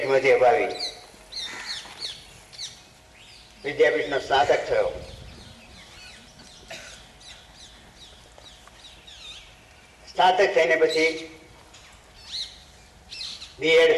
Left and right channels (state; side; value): identical; both; correlation 1.00